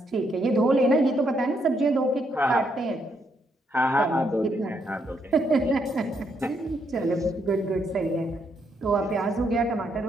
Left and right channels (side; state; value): both; normal; correlation 0.76